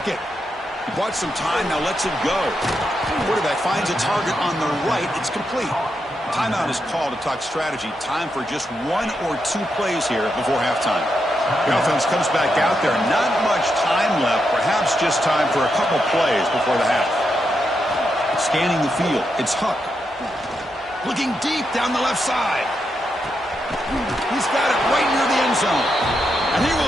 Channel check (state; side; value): normal; both; correlation 0.83